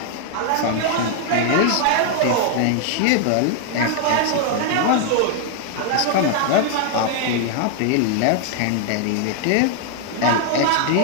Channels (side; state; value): both; different; correlation 0.00